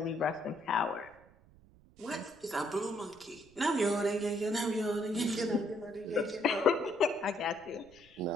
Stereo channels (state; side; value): noise; right; rumble, 26 dB below the sound